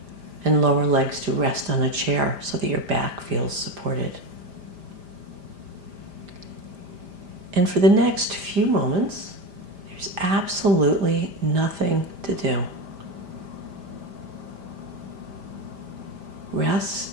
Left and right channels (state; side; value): late; left; 5.0 ms